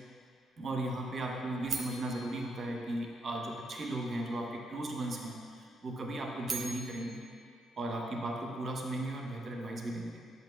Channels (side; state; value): both; normal; correlation 0.78